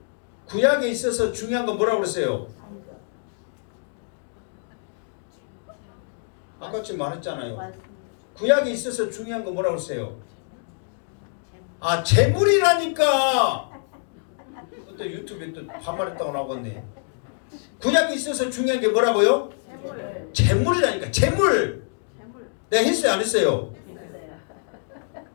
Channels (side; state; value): right; silent; digital silence